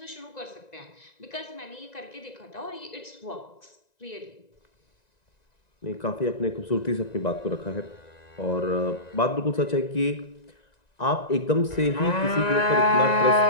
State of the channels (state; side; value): late; right; 1.9 ms